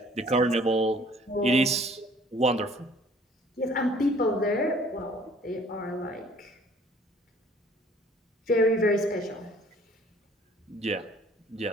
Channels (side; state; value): both; normal; correlation 0.55